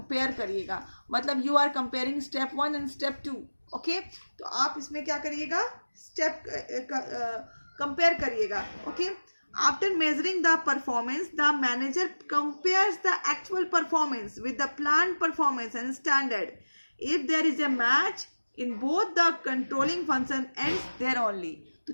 करिएगा। मतलब you are comparing step 1 and step 2। Okay, तो आप इसमें क्या करिएगा, स्टेप कंपेयर करिएगा। Okay, after measuring the performance the manager compares the actual performance with the plan performance and standard. If there is a match in both the controlling function ends there only.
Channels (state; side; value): inverted; both; correlation -1.00